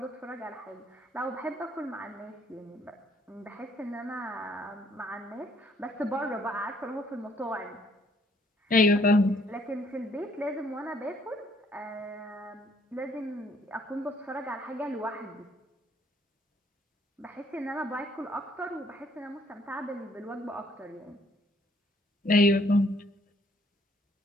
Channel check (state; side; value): normal; both; correlation 0.64